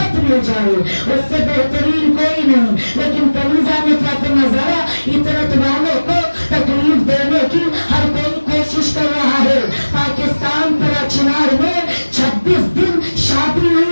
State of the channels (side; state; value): both; inverted; correlation -1.00